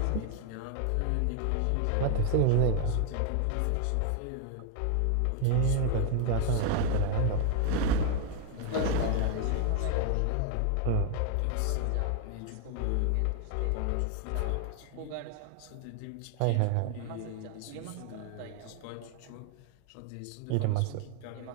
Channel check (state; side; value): different; both; correlation 0.00